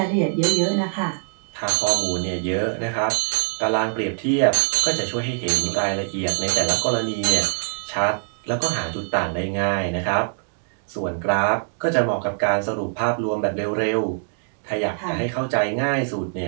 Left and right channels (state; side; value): silent; left; 63 dB below the other